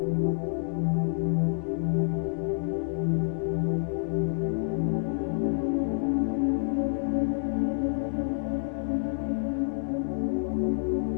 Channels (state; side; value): silent; right; 57 dB below the other